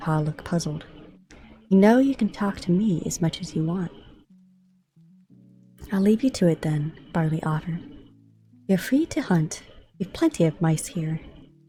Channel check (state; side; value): identical; both; correlation 1.00